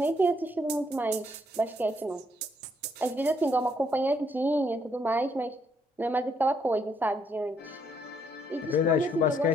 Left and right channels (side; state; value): both; normal; correlation 0.71